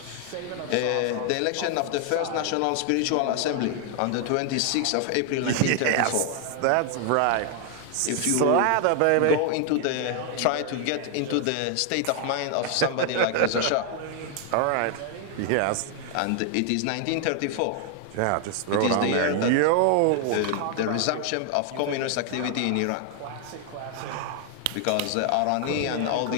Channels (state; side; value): different; both; correlation 0.00